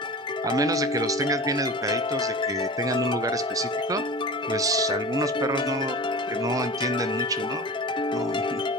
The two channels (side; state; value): both; normal; correlation 0.34